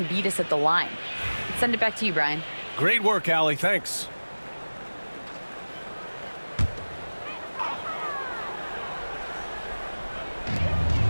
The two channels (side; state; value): both; inverted; correlation -1.00